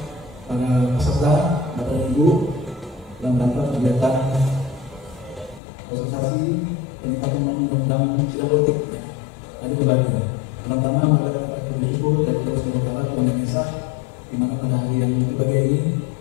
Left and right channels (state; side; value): drops out; right; at 5.6 s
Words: para peserta Bapak Ibu dalam rangka kegiatan sosialisasi peningkatan undang-undang sidang politik. Ada beberapa. Pertama adalah bersyukur dari Allah Subhanahu wa Ta'ala Tuhan Yang Esa, di mana pada hari yang berbahagia ini